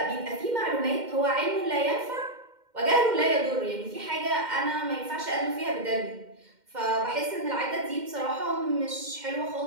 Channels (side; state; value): left; late; 2.1 ms